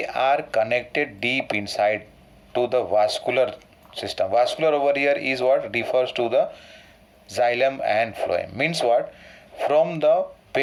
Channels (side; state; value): both; identical; correlation 1.00